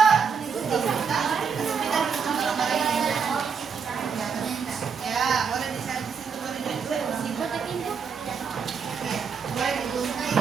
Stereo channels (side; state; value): left; quieter; 6.2 dB